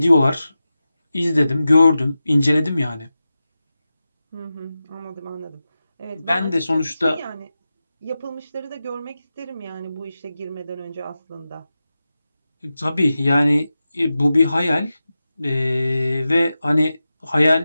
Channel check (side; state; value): both; inverted; correlation -0.93